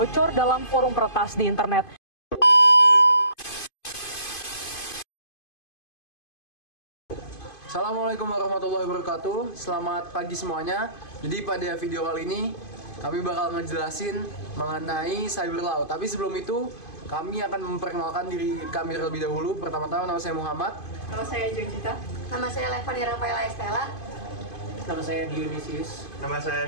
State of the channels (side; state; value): right; late; 2.5 ms